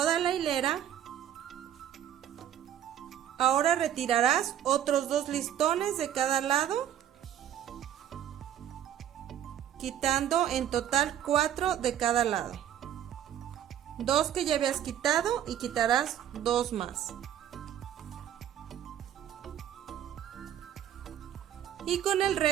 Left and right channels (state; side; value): quieter; left; 10.6 dB